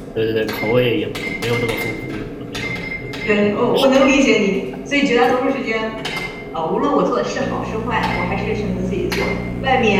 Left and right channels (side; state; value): both; identical; correlation 1.00